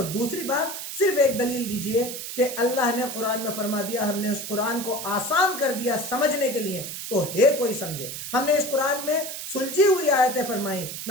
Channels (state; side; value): noise; right; hiss, 7 dB below the sound